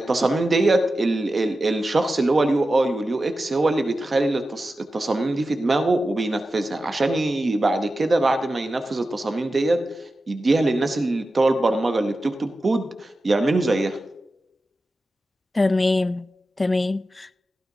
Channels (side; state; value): both; normal; correlation 0.93